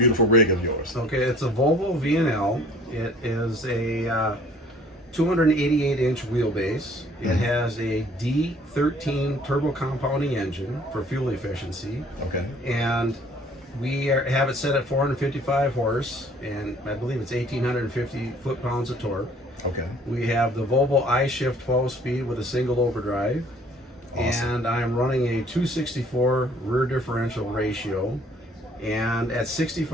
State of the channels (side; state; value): both; normal; correlation 0.55